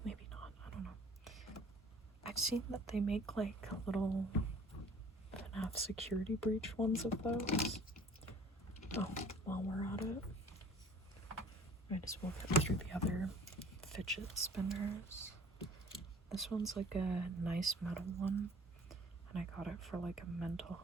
maybe not, I don't know. I've seen that they make like little FNAF security breach ones of those. Oh, while we're at it, might as well get through the other fidget spinners. This one's like a nice metal one, and I got it for like a mental.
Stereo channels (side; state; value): both; normal; correlation 0.50